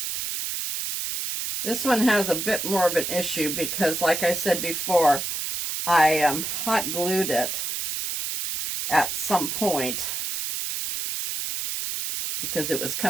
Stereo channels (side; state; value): right; noise; hiss, 3 dB below the sound